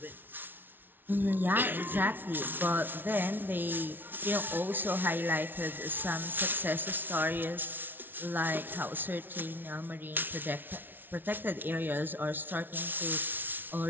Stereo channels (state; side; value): late; left; 0.094 ms